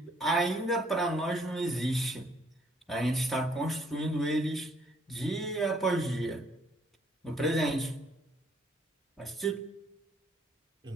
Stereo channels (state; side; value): normal; both; correlation 0.65